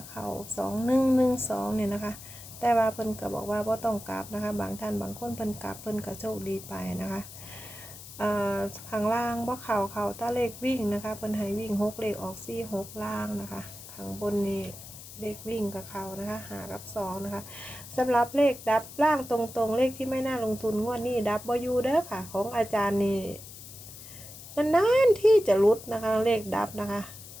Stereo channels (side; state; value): left; noise; hiss, 15 dB below the sound